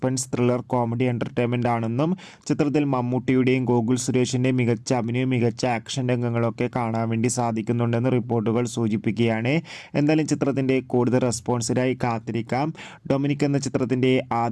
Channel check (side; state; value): both; identical; correlation 1.00